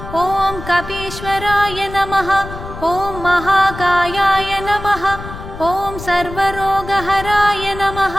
ఓం కపీశ్వరాయ నమః ఓం మహాకాయాయ నమః ఓం సర్వరోగహరాయ నమః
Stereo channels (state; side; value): noise; left; rumble, 12 dB below the sound